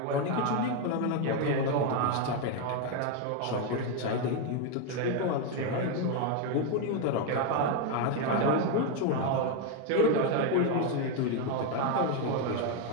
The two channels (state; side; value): different; both; correlation 0.02